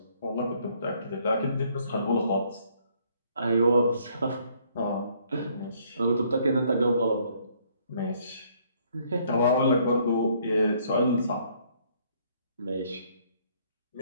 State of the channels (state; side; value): inverted; both; correlation -0.65